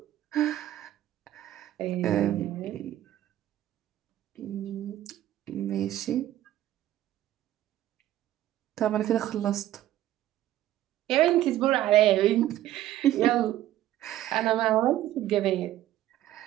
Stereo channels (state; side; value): quieter; left; 13.5 dB